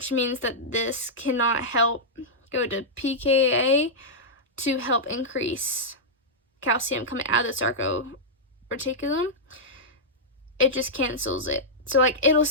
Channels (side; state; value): both; normal; correlation -0.09